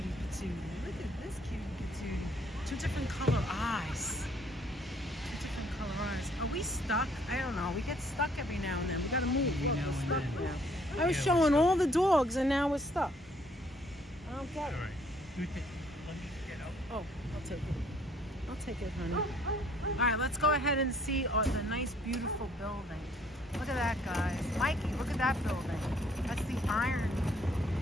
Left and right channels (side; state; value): both; normal; correlation 0.63